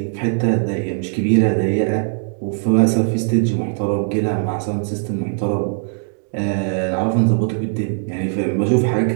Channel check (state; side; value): silent; left; 66 dB below the other